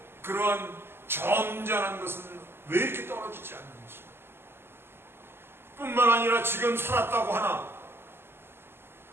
그러한 점잖은 것은 왜 이렇게 떨어지지 않는지, 뿐만 아니라 지금 살았다고 하나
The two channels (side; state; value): left; late; 0.11 ms